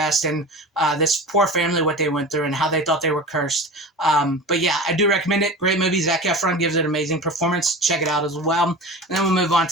and this poor family, what they went through and how they thought they were cursed. But yeah, I do recommend it. Great movie. Zac Efron gives it an amazing performance. Check it out as well. And then we'll move on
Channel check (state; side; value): normal; both; correlation 0.33